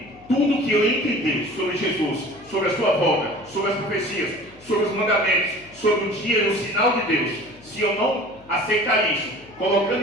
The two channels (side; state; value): left; noise; hum, 26 dB below the sound